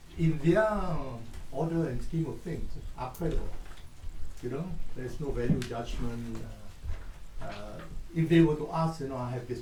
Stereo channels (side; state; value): both; identical; correlation 1.00